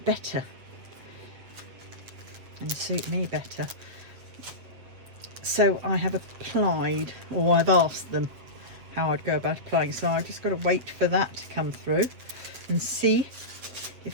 better and suit me better. So I have applied, or I've asked them how I'd go about applying. So I've just got to wait for that to come through and see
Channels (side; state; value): left; late; 8.0 ms